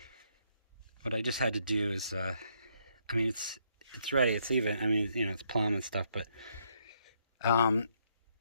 what I just had to do is, I mean, it's ready, it's even. I mean, you know, it's plumb and stuff, but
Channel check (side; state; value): both; inverted; correlation -0.72